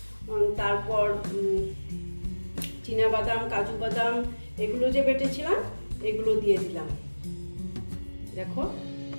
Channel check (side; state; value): both; inverted; correlation -1.00